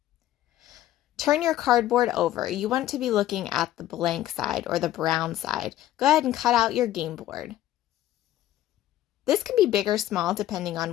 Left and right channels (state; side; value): quieter; right; 13.4 dB